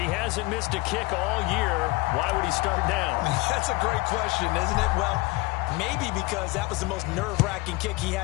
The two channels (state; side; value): quieter; right; 22.9 dB